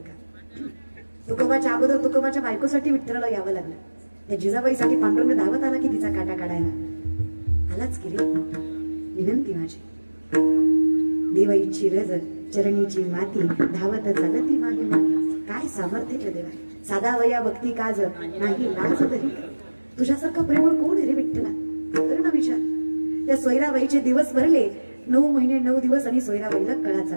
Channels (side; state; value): both; inverted; correlation -1.00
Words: तुकोबाच्या अगोदर तुकोबाच्या बायकोसाठी विठ्ठलाला यावं लागलं. त्या जिजाबाईसाठी पांडुरंग धावत आला की तिचा काटा काढायला. आलाच की रे. विनंती माझी, देवाईची रज चरणीची माती, धावत चालती मागे मागे. काय सामर्थ्य रे देवा. साधा वया भक्ती काज नाही लाज तरी. तुझ्यासारखा प्रेमळ कोण रे विठ्ठला? कर ना विचार. त्या सोयराबाईचे दिवस भरले. 9 महिने 9 दिवस आणि सोयराबाईला कळा